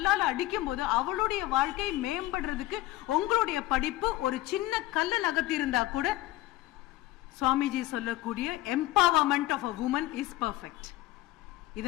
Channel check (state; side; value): quieter; right; 16.6 dB